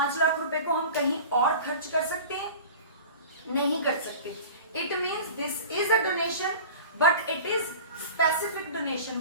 लाख रुपए को हम कहीं और खर्च कर सकते हैं? नहीं कर सकते। It means this is a donation but it is specific donation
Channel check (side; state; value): both; inverted; correlation -0.38